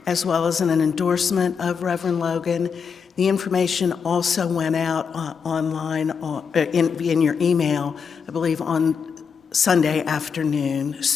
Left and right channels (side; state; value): right; quieter; 6.2 dB